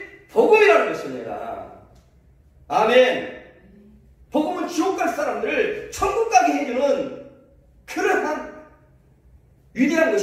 복음이라는 것입니다. 아멘. 복음은 지옥 갈 사람들을 천국 가게 해주는 그러한 위대한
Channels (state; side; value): identical; both; correlation 1.00